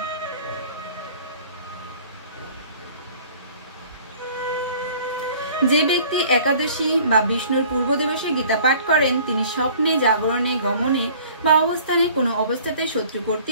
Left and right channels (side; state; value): both; inverted; correlation -0.50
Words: যে ব্যক্তি একাদশী বা বিষ্ণুর পূর্ব দিবসে গীতা পাঠ করেন, তিনি স্বপ্নে, জাগরণে, গমনে বা অবস্থানে কোনো অবস্থাতে শত্রু